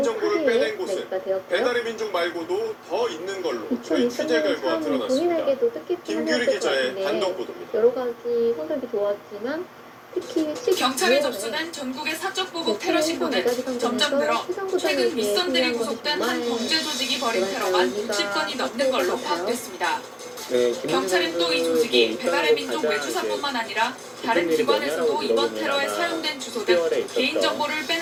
빼낸 곳은 배달의 민족 말고도 더 있는 걸로 저희 취재 결과 드러났습니다. 김규리 기자의 단독 보도입니다. 여러 가지 성적이 좋았지만 경찰에 접수된 전국의 사적 보복 테러 신고는 점점 늘어 최근 윗선들이 구속된 한 범죄 조직이 벌인 테러만 60건이 넘는 걸로 파악됐습니다. 경찰은 또 이 조직이 배달의 민족 외주사뿐만 아니라 다른 기관에서도 이번 테러에 사용된 주소 등 개인정보를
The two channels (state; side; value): identical; both; correlation 1.00